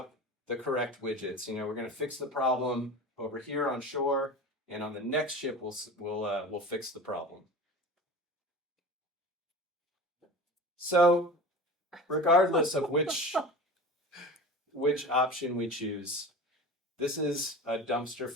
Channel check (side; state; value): both; normal; correlation 0.34